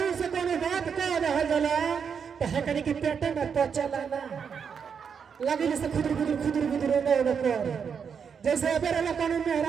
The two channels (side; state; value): left; quieter; 6.7 dB